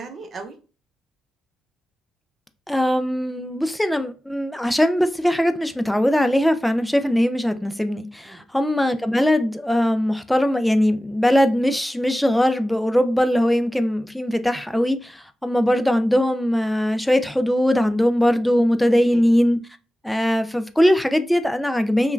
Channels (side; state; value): both; normal; correlation 0.96